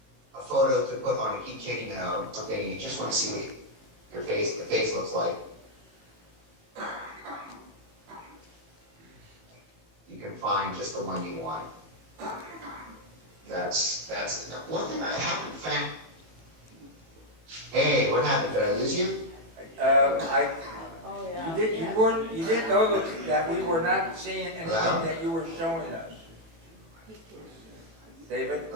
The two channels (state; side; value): late; left; 18 ms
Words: a photo to put on a keychain, you know, something, you just want to see what your face, the face looks like. You can find just the one you want. That's one thing I haven't found. Hey, what happened? Did I lose you? Oh, yeah. You didn't know that we were not seeing anything Hello? that you were showing us. David,